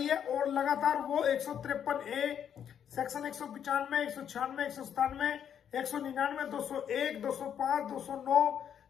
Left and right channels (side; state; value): right; quieter; 8.8 dB